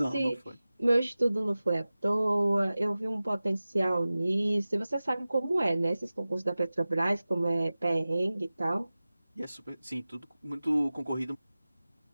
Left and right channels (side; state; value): both; inverted; correlation -0.97